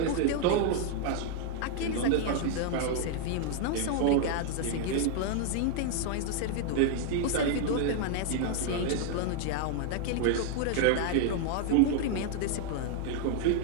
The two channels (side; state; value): both; different; correlation 0.00